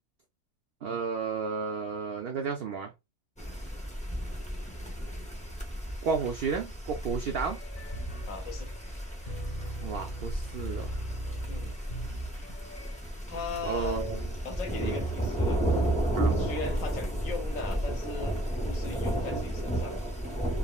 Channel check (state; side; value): normal; both; correlation 0.54